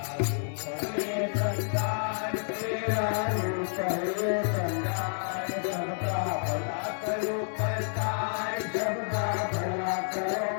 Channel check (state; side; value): silent; right; 58 dB below the other